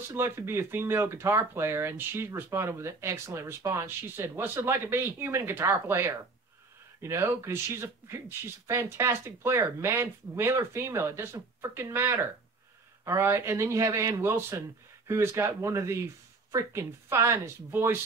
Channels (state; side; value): quieter; left; 3.8 dB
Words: it like to be a female guitar player?" And she responded with an excellent response. She said, "What's it like to be a human guitar player?" You know, because she's a fantastic player, male or female, it doesn't freaking matter. All right, and then you have Ann Wilson, who has got one of the freaking finest